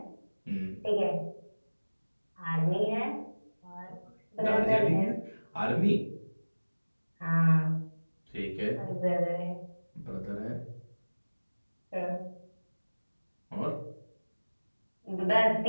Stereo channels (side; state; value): both; inverted; correlation -1.00